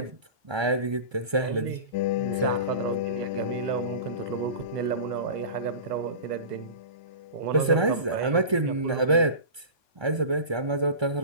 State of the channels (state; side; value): late; left; 1.3 ms